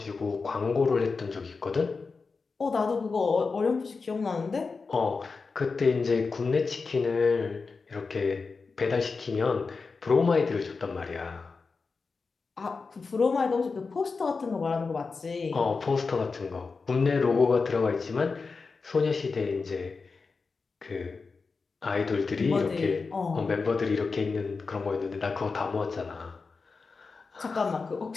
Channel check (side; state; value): right; quieter; 4.5 dB